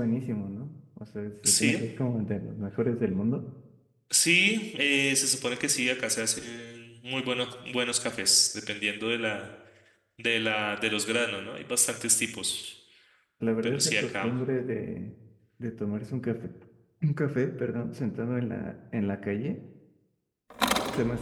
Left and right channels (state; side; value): identical; both; correlation 1.00